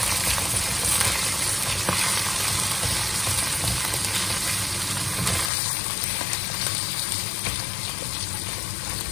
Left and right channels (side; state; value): right; drops out; at 5.5 s